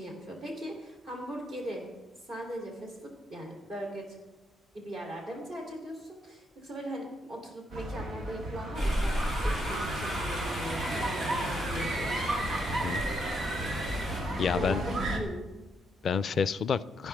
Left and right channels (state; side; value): normal; both; correlation 0.77